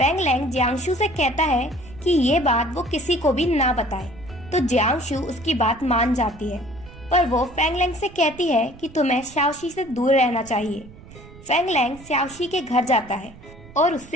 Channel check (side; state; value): right; noise; rumble, 19 dB below the sound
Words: लैंग जियांगशु से कहता है कि ये बात वो किसी को भी ना बताए, तो जियांगशु उसकी बात मान जाती है, पर वो फेंग लैंग से कहती है कि तुम्हें शाओशी से दूर रहना चाहिए। फेंग लैंग शाओशी के घर जाता है और